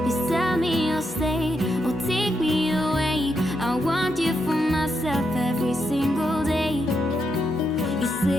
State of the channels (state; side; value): normal; both; correlation 0.82